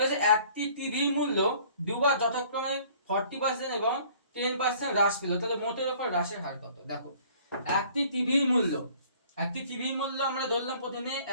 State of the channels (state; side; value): inverted; both; correlation -0.55